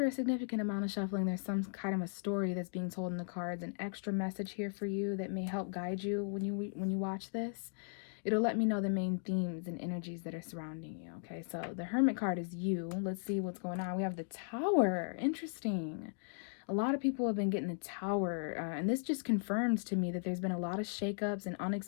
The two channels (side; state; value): right; silent; digital silence